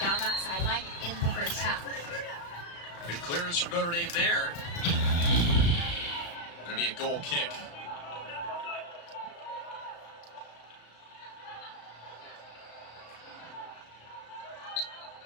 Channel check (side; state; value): right; late; 35 ms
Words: down that sideline in the first half. Good clearance from Notre Dame there. Gonna be a goal kick.